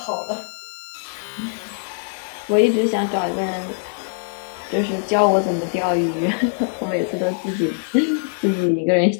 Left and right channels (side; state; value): right; silent; digital silence